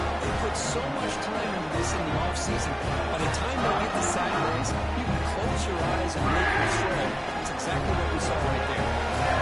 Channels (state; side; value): identical; both; correlation 1.00